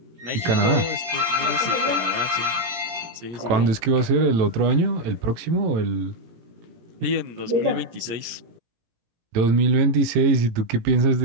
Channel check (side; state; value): left; late; 17 ms